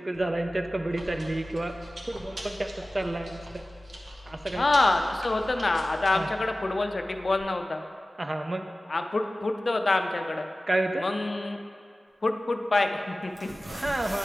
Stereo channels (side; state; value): both; normal; correlation 0.97